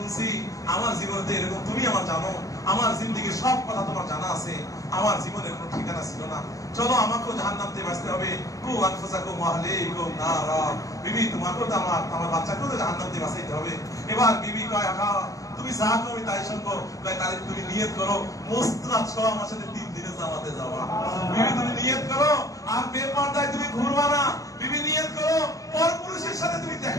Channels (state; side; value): late; right; 0.16 ms